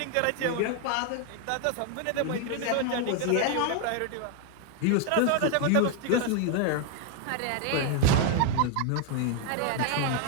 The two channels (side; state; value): both; different; correlation 0.00